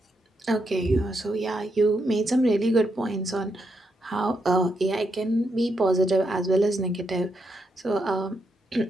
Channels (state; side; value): normal; both; correlation 0.81